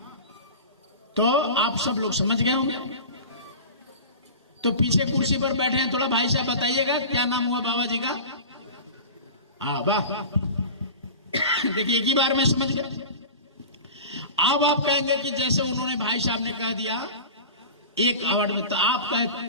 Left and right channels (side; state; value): both; inverted; correlation -0.34